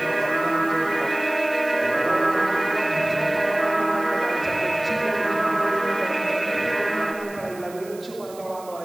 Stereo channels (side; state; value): right; noise; hiss, 21 dB below the sound